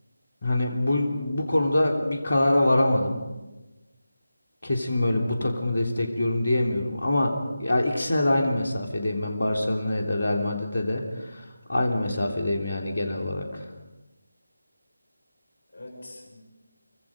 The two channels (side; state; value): both; inverted; correlation -0.92